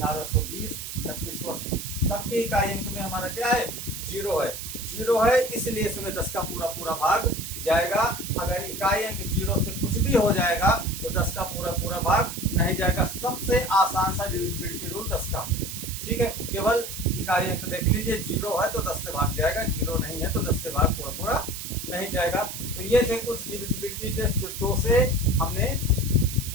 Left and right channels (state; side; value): noise; right; hiss, 8 dB below the sound